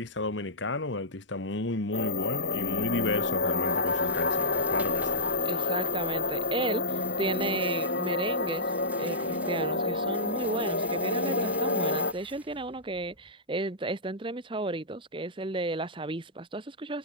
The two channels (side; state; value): both; normal; correlation -0.12